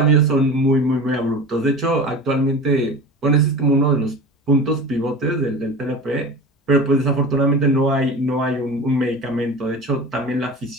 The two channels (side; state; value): both; normal; correlation 0.33